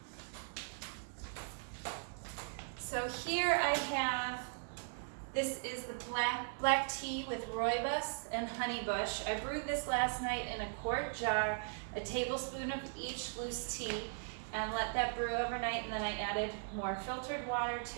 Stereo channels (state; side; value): silent; left; digital silence